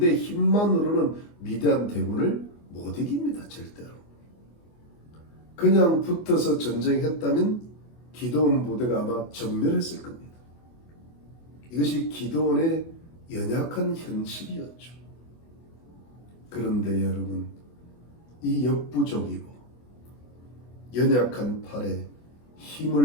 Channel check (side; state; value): right; late; 24 ms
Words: 힘만으로는 미디안 대군을 못 이깁니다. 절대로. 그냥 붙어서 전쟁했다면 기드온 부대가 아마 전멸했을 겁니다. 이것이 기드온의 연약한 현실이었죠. 그런데 여러분, 이 역부족이고 연약한 팔에